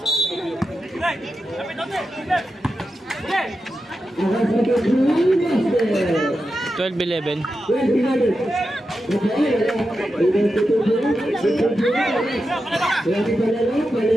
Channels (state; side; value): normal; both; correlation 0.90